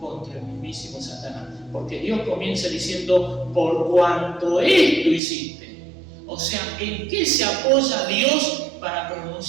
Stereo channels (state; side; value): drops out; left; at 5.2 s